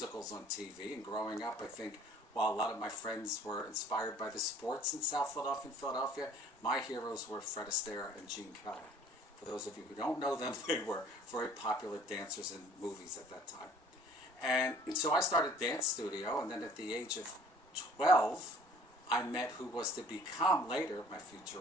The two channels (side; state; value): both; normal; correlation 0.53